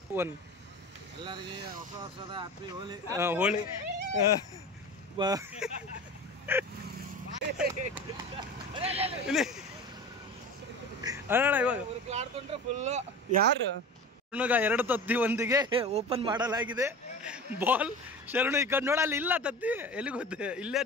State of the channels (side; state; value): both; normal; correlation 0.34